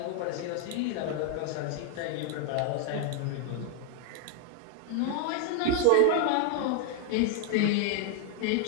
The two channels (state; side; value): different; both; correlation 0.00